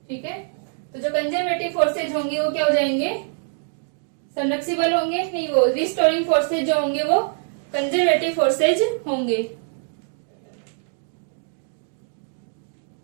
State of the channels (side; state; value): left; silent; digital silence